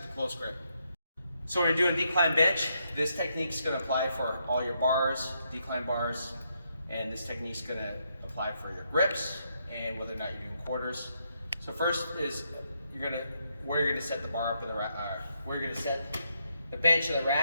a close grip. So when you're doing decline bench, this technique's gonna apply for all your bars, decline bars, and this technique's gonna apply for your grips and whether or not you're doing quarters. So first is where you're gonna set the bar up in the where you're gonna set the bench in the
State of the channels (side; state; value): both; inverted; correlation -0.78